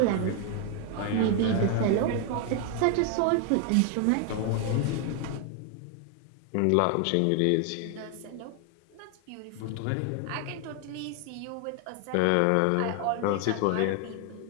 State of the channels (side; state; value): both; different; correlation 0.00